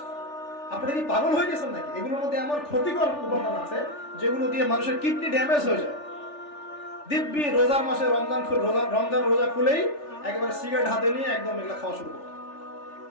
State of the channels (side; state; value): right; late; 3.4 ms